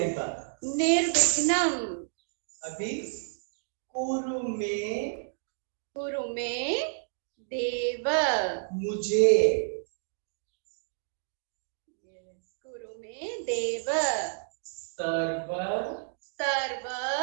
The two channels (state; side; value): silent; left; digital silence